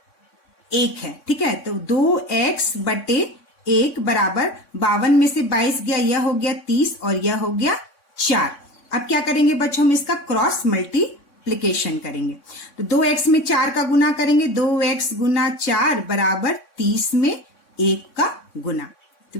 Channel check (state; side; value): late; right; 3.6 ms